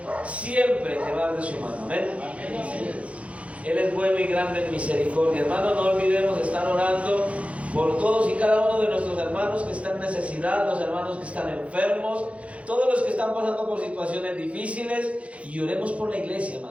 siempre llevar de su mano. Amén. Él es bueno y grande en misericordia. Hermanos, no olvidemos estar orando por todos y cada uno de nuestros hermanos que están en necesidad, los hermanos que están enfermos, todos los que están pasando por situaciones difíciles, y oremos por la iglesia,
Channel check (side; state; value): left; late; 0.063 ms